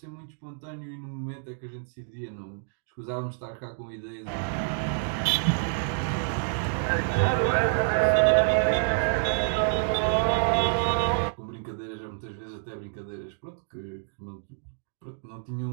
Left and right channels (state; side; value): silent; left; digital silence